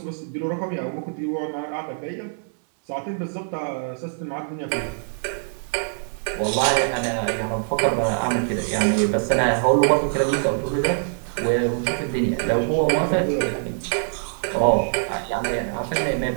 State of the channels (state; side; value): silent; left; digital silence